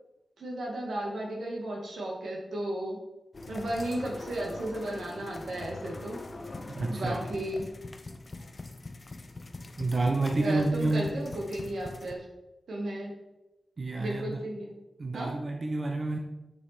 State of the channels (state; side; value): normal; both; correlation 0.93